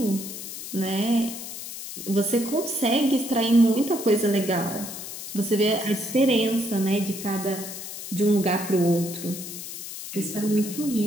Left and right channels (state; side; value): noise; left; hiss, 9 dB below the sound